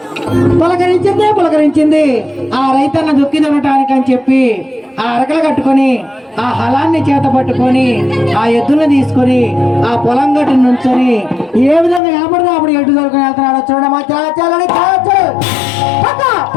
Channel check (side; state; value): right; drops out; at 12.0 s